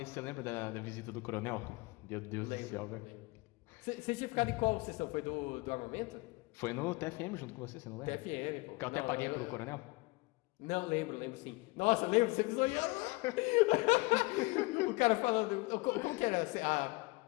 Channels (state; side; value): quieter; right; 25.0 dB